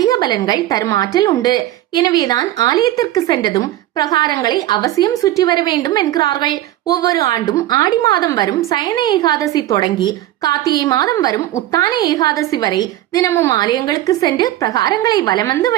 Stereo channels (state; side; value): quieter; left; 14.3 dB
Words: பலன்கள் தரும் ஆற்றல் உண்டு. எனவேதான் ஆலயத்திற்கு சென்றதும் பிரகாரங்களை அவசியம் சுற்றி வர வேண்டும் என்கிறார்கள். ஒவ்வொரு ஆண்டும் ஆடி மாதம் வரும் சயன ஏகாதசி தொடங்கி கார்த்திகை மாதம் வரும் உத்தான ஏகாதசி வரை தினமும் ஆலயங்களுக்கு சென்று பிரகாரங்களை வலம் வந்து